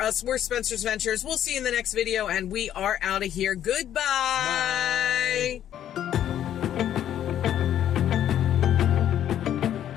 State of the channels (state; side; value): quieter; right; 10.9 dB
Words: us. We're Spencer's Ventures. We'll see you in the next video, and we are out of here. Goodbye. Bye.